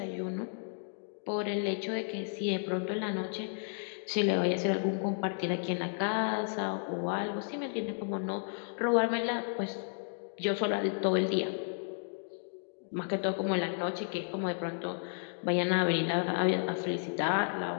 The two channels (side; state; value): right; silent; digital silence